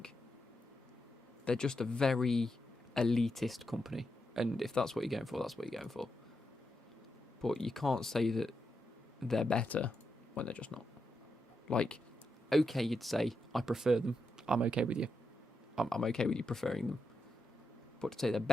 They're just a very elitist company. And if that's what you're going for, that's what you're going for. But you can't say that they're better when they're just not. Like, okay, you'd say, I prefer them. I'm okay with you. I'm okay with you preferring them. But to say they're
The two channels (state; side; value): normal; both; correlation 0.85